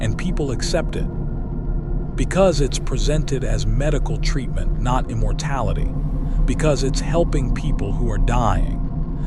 people accept it. Because it's presented as medical treatment, not immortality. Because it's helping people who are dying.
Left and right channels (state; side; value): identical; both; correlation 1.00